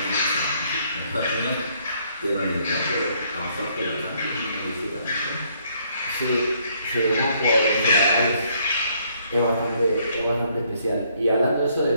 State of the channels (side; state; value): both; inverted; correlation -0.68